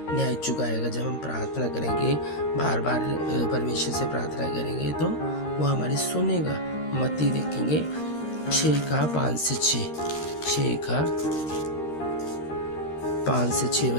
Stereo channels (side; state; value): right; late; 13 ms